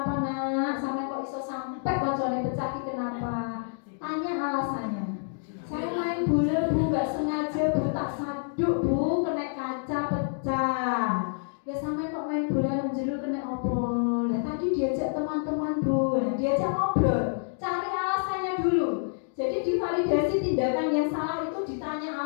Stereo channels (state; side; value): silent; right; digital silence